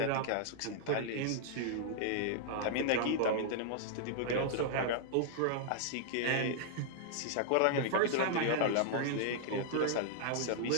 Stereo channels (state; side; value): different; both; correlation -0.01